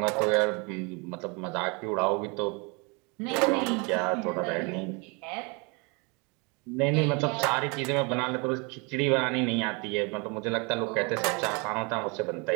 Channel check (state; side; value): quieter; left; 30.6 dB